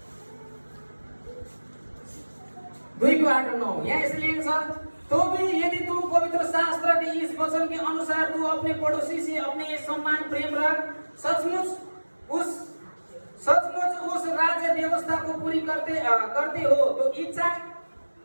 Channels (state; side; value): inverted; both; correlation -1.00